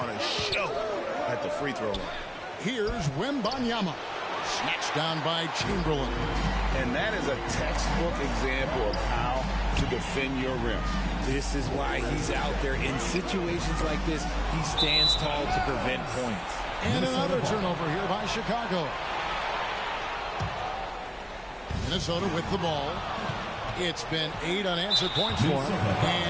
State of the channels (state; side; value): identical; both; correlation 1.00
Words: a show at the free throw line. Here's Wembanyama. Snatched down by Chamberlain. And that is a textbook example of how to defend your rim. This is why he's out there in situations like this. He stands tall to prevent points. And another turnover here by Chicago. Minnesota with the ball. It's been 8 unanswered points for him.